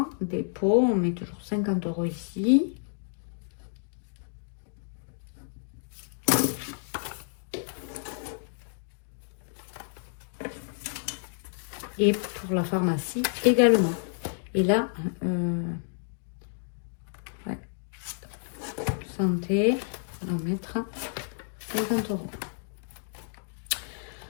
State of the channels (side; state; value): right; silent; digital silence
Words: dépôt, on met toujours 50 € ici. Et pour la pharmacie également. Et là, ouais, santé, on va mettre 50 €.